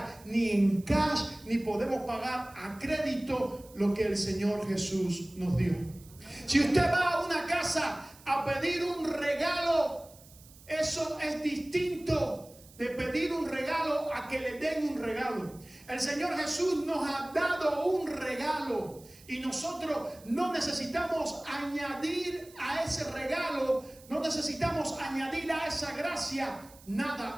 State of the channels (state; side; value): noise; right; hiss, 23 dB below the sound